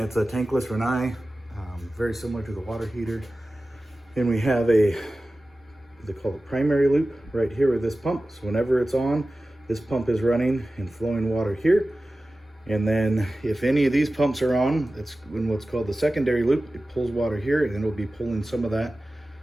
a tankless Rinnai, very similar to the water heater. And we have a, they call it primary loop right here with this pump. So whenever it's on, this pump is running and flowing water here. And then if any of these pumps are on, it's in what's called the secondary loop. It pulls water here, and it'll be pulling some of that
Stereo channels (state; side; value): normal; both; correlation 0.96